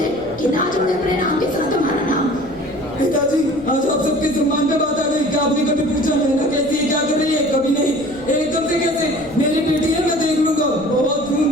कि ना जोड़े अपने नाम के साथ हमारा नाम। पिताजी, आज आप सबके सम्मान पे बात आ गई। क्या आपने कभी पूछा नैना कैसी है, क्या कर रही है? कभी नहीं। एकदम से कैसे? मेरी बेटी है, मैं देख लूंगा। बहुत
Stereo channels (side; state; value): right; noise; rumble, 21 dB below the sound